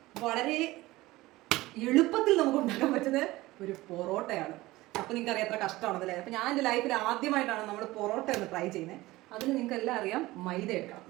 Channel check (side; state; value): left; quieter; 18.7 dB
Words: വളരെ എളുപ്പത്തിൽ നമുക്ക് ഉണ്ടാക്കാൻ പറ്റുന്ന ഒരു പൊറോട്ടയാണ്. അപ്പോൾ നിങ്ങൾക്ക് അറിയാം എത്ര കഷ്ടമാണെന്നല്ലേ. അപ്പോൾ ഞാൻ എൻ്റെ ലൈഫിൽ ആദ്യമായിട്ടാണ് നമ്മൾ പൊറോട്ട ഒന്ന് ട്രൈ ചെയ്യുന്നത്. അതിന് നിങ്ങൾക്ക് എല്ലാം അറിയാം, മൈദ എടുക്കണം.